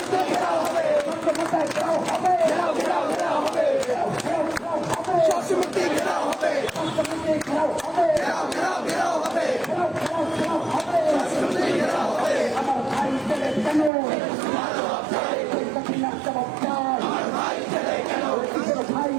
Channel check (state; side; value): drops out; left; at 13.9 s